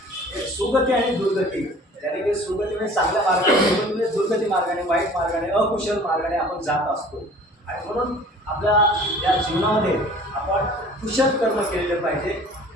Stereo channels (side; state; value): both; normal; correlation 0.48